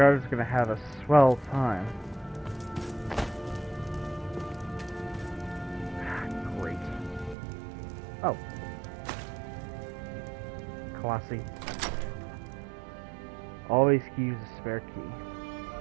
is going to have a swell time. Great. Oh. Classy. Always use a spare key.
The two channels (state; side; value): drops out; left; at 7.4 s